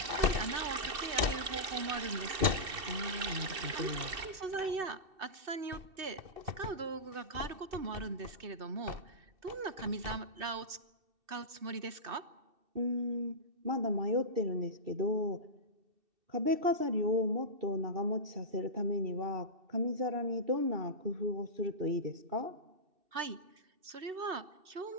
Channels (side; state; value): left; late; 2.7 ms